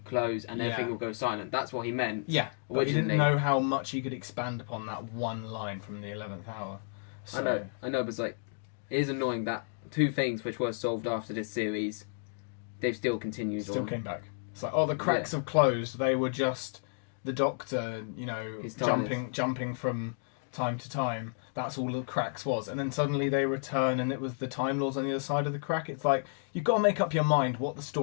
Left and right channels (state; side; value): silent; right; digital silence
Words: close and everything will go silent. That's what he meant. Yeah, but he didn't know how much he could expand upon that one line from the 11th Hour. So, I know, but it is annoying that 2 things which were solved after this series, they've still continued. Still came back. It's like, the cracks have closed. They were just the Doctor, jumping from time to time. That's all the cracks was. And then suddenly they return and it was the Time Lords on the other side of the crack. It's like, you've got to make up your mind what the